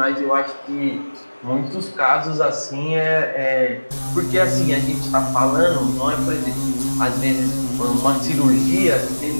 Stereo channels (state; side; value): inverted; both; correlation -1.00